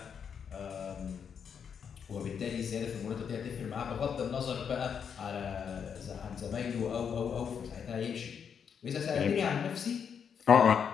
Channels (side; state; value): right; quieter; 7.2 dB